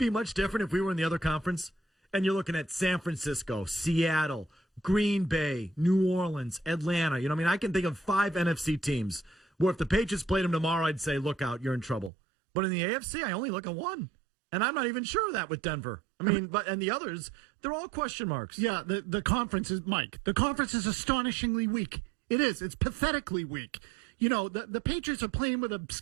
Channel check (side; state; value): left; drops out; at 12.1 s